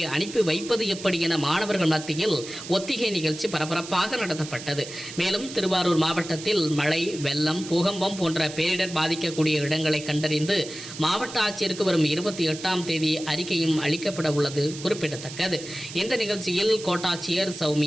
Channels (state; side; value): noise; right; hiss, 12 dB below the sound